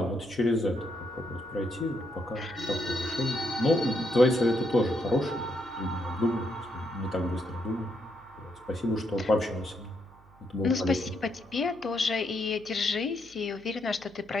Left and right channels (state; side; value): noise; right; hum, 25 dB below the sound